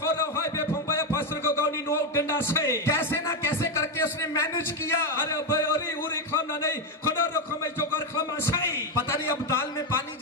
कैसे ना कैसे करके उसने मैनेज किया। पता नहीं अब दाल में पानी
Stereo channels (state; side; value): normal; both; correlation 0.06